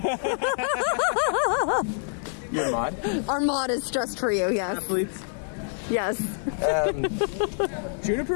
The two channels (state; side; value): silent; right; 61 dB below the other